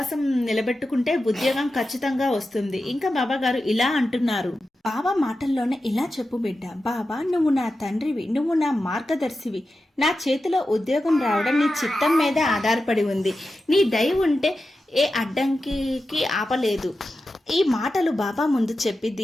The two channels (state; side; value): normal; both; correlation 0.92